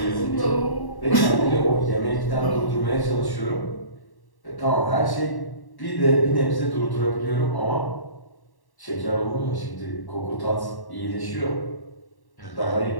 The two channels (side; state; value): right; late; 1.1 ms